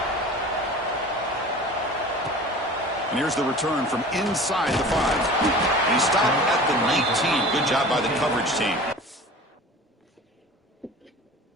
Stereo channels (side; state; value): both; normal; correlation 0.40